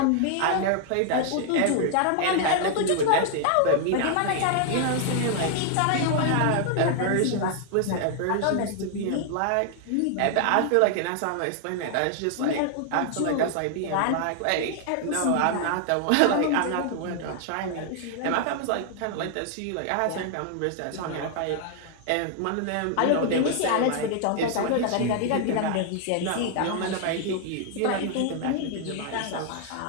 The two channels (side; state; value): both; different; correlation 0.00